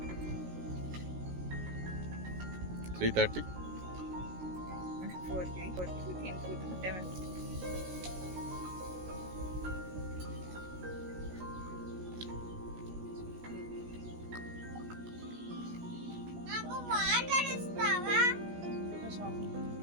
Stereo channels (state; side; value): late; left; 16 ms